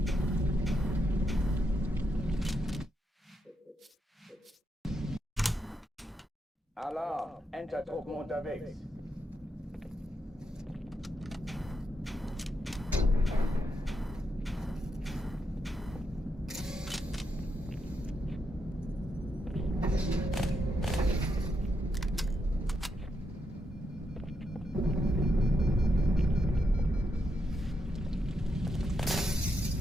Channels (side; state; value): both; normal; correlation 0.82